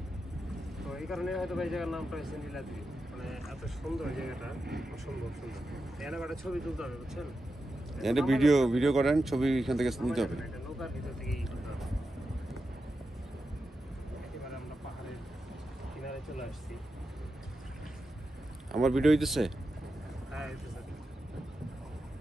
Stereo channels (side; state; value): both; normal; correlation 0.89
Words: তো এই কারণে হয়তো এই জায়গার নামটা হয়েছে নীলাদ্রি। মানে এত সুন্দর জায়গাটা, অসম্ভব সুন্দর। এখানে একটা ছবি তুলতে হবে, বুঝছেন? এটা ভিডিও করেন, ছবি এখান থেকে নিতে হবে। নৌকার ভিতর থেকেই তুলতে হবে। একেবারে আমরা পাহাড়ের কিনারে চলে আসছি। আমার ভিডিও হইতেছে? হ্যাঁ, এই তো স্যার।